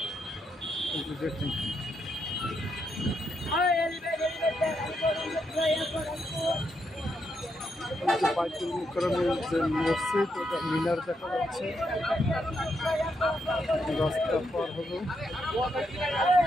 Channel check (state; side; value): normal; both; correlation 0.80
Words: দেখুন বাইতুল মোকাররমের যে মসজিদ ওটা মিনার দেখা যাচ্ছে। রাস্তা পার হলো